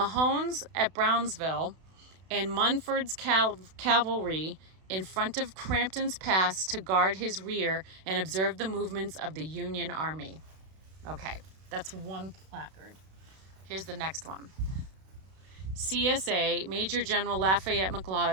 at Brownsville and Munford's cavalry in front of Crampton's Pass to guard his rear and observe the movements of the Union Army. Okay, that's one placard. Here's the next one. CSA, Major General Lafayette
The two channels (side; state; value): left; late; 32 ms